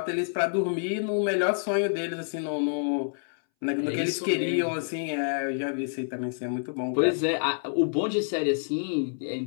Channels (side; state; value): right; silent; 60 dB below the other